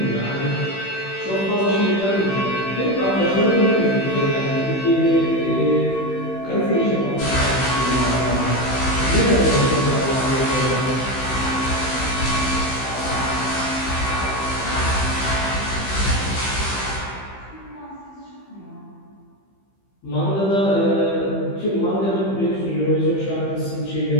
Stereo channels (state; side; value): late; right; 15 ms